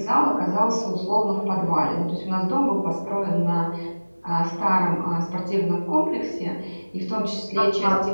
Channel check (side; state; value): both; inverted; correlation -1.00